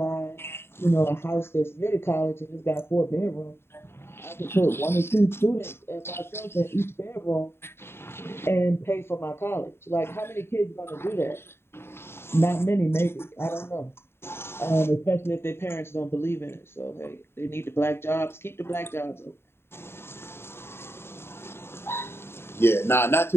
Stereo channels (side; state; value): right; late; 0.11 ms